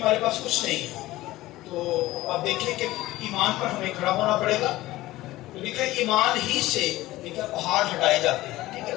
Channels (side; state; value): right; quieter; 17.2 dB